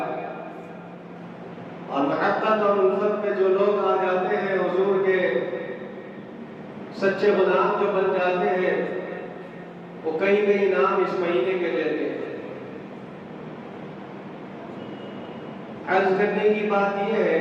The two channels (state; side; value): identical; both; correlation 1.00